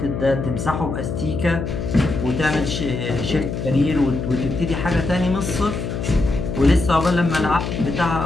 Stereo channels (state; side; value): noise; left; hum, 4 dB below the sound